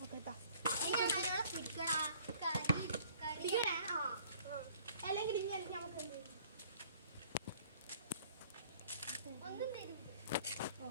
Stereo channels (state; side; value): inverted; both; correlation -0.56